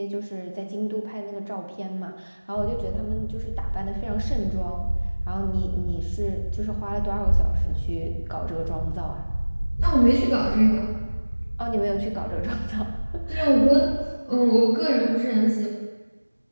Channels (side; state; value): both; inverted; correlation -1.00